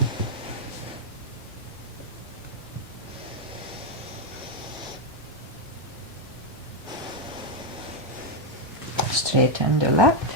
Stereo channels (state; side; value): normal; both; correlation 0.01